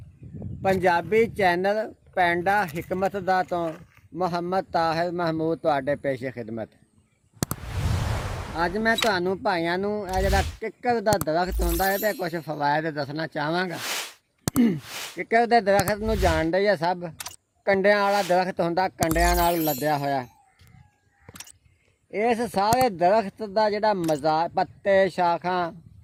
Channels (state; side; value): identical; both; correlation 1.00